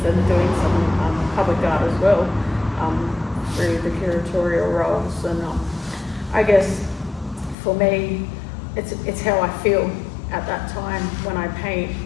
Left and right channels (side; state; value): right; drops out; at 7.6 s